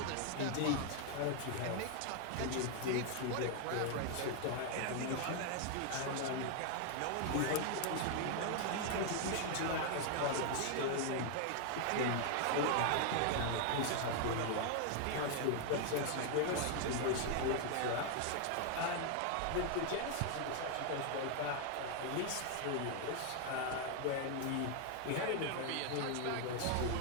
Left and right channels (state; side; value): different; both; correlation 0.00